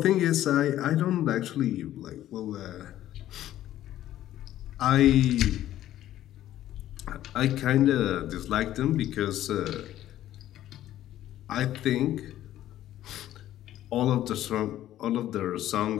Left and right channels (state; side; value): quieter; right; 13.0 dB